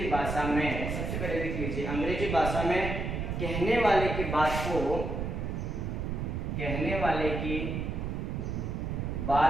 भाषा में सबसे पहले लिख लीजिए अंग्रेजी भाषा में कहने वाले की बात को, कहने वाले की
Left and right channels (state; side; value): noise; right; rumble, 2 dB below the sound